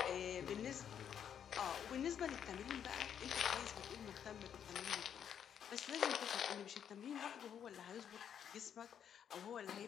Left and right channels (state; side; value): quieter; right; 8.7 dB